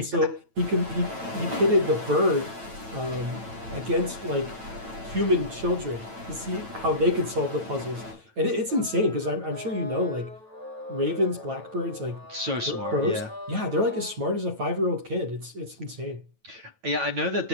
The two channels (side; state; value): left; late; 9.0 ms